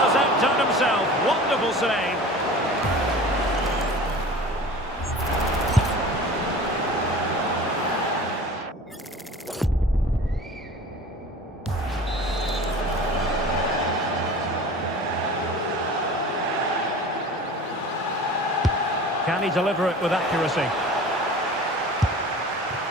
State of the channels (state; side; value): normal; both; correlation 0.39